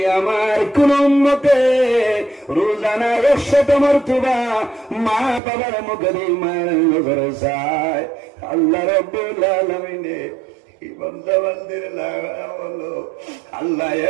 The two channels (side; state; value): left; drops out; at 5.4 s